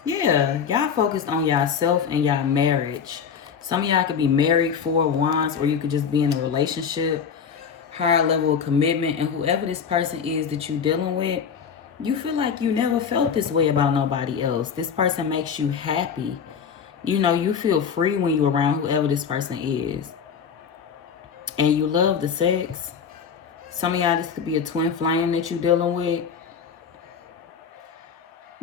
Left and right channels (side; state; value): right; quieter; 6.8 dB